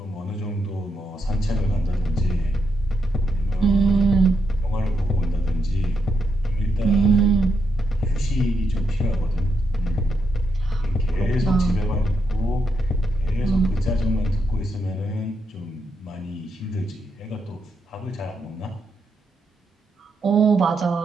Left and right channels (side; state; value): both; normal; correlation 0.81